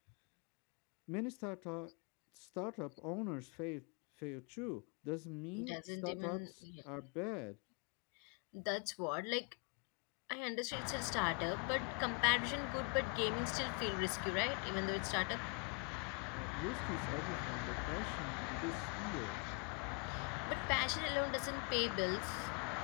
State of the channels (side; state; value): right; quieter; 32.6 dB